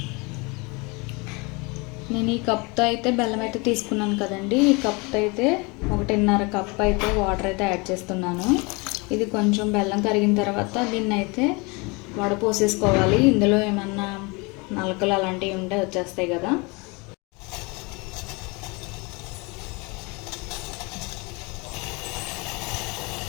నేను ఈ కప్తో అయితే బెల్లం అయితే తీసుకున్నాను కదండి. ఈ కప్తో అయితే 1.5 కప్ అయితే వాటర్ అయితే యాడ్ చేస్తున్నాను. ఇది కొంచెం బెల్లం కరిగిన తర్వాత దీన్ని అయితే వడపోసేసుకోవాలి. ఇందులో ఏమన్నా నలకలు అలాంటివి ఉంటే వచ్చేస్తాయి కదా.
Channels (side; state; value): right; quieter; 28.0 dB